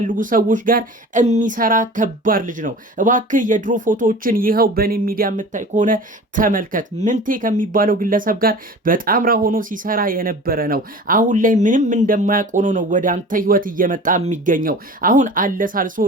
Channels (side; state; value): both; normal; correlation 0.39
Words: ሰዎች ጋር የሚሰራ ከባድ ልጅ ነው። እባክህ የድሮ ፎቶዎችን ይኸው በኔ ሚዲያ የምታይ ከሆነ ተመልከት። ምንቴ ከሚባለው ግለሰብ ጋር በጣምራ ሆኖ ሲሰራ የነበረ ነው። አሁን ላይ ምንም እንደማያውቅ ሆኖ ነው ወደ አንተ ህይወት እየመጣ የሚገኘው። አሁን አለሳልሶ